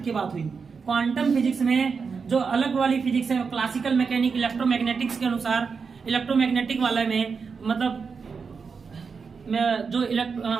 बात हुई। क्वांटम फिजिक्स में जो अलग वाली फिजिक्स है, क्लासिकल मैकेनिक इलेक्ट्रोमैग्नेटिक्स के अनुसार, इलेक्ट्रोमैग्नेटिक वाले में मतलब जो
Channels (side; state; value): left; quieter; 5.4 dB